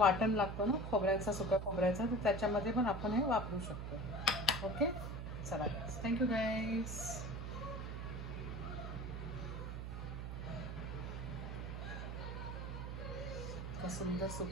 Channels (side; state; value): right; noise; hum, 5 dB below the sound